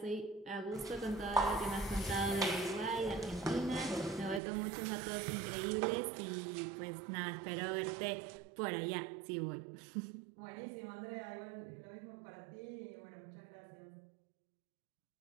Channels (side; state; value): left; drops out; at 4.4 s